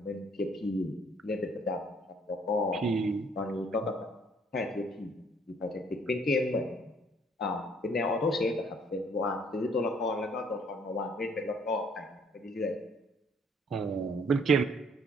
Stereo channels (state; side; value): normal; both; correlation 0.62